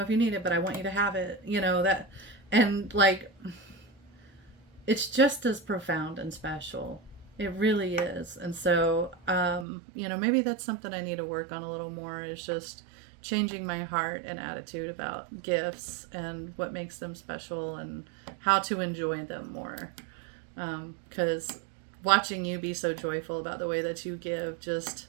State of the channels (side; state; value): left; drops out; at 9.7 s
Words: if you need it, but I want you to have it, that, and it's just as profound and special. It really is. And so maybe that's something I need to work on a little more, is just changing my heart and attitude about gifts and what makes them special and how to enjoy them more. Because watching you be so joyful about the way that you give just